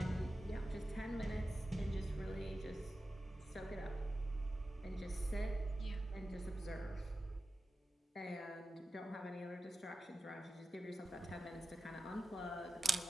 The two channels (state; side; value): normal; both; correlation 0.93